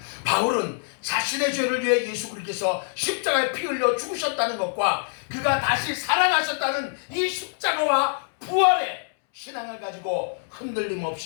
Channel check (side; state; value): right; silent; 62 dB below the other